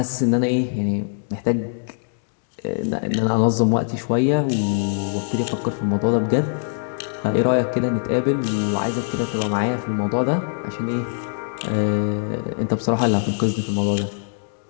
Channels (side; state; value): right; silent; 63 dB below the other